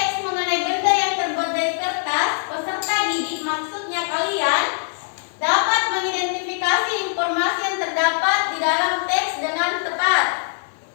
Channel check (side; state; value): right; silent; digital silence